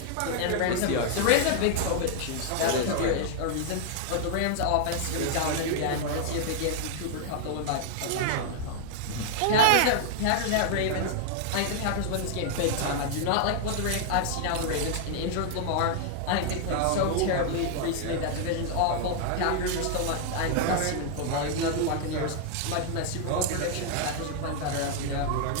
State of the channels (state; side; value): different; both; correlation 0.00